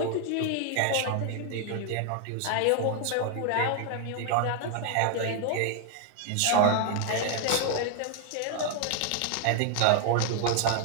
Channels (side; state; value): both; different; correlation 0.00